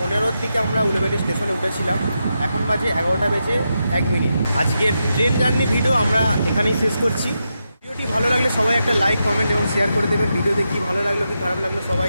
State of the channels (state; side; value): inverted; both; correlation -0.86